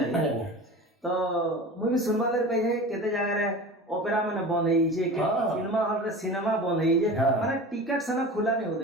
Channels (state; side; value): normal; both; correlation 0.34